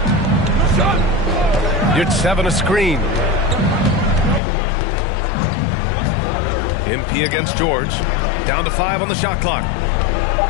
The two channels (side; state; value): right; drops out; at 4.4 s